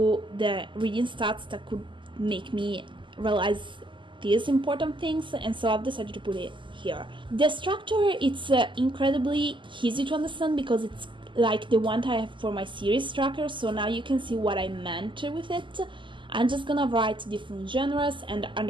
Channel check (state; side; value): late; left; 0.24 ms